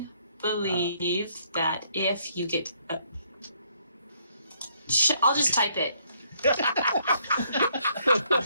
believe that if you get I'll just type it.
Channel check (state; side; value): inverted; both; correlation -0.68